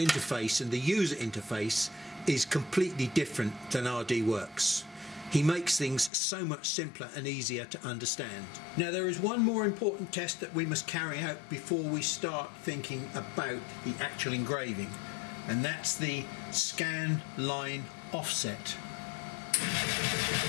and the user interface is completely different than RDWorks. He makes things so much simpler and easier to understand. Now there is one more important test that we must carry out before we start thinking about the actual engraving, and that's the scan line offset.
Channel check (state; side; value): drops out; right; at 6.1 s